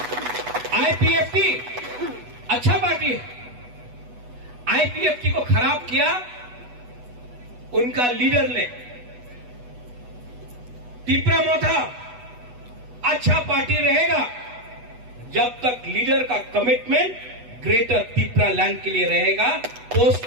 आईपीएफटी अच्छा पार्टी है, आईपीएफटी को खराब किया उनका लीडर ने। त्रिपुरा मोथा अच्छा पार्टी रहेगा जब तक लीडर का कमिटमेंट ग्रेटर त्रिपुरालैंड के लिए रहेगा, पोस्ट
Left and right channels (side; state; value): left; late; 8.1 ms